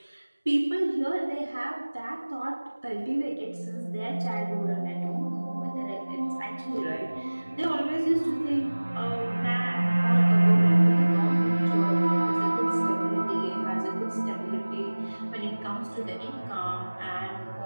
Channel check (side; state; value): both; inverted; correlation -1.00